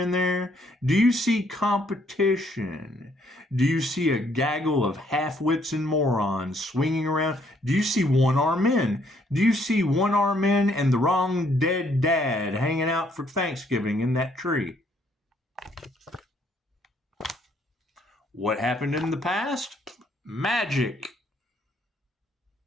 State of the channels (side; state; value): both; normal; correlation 0.68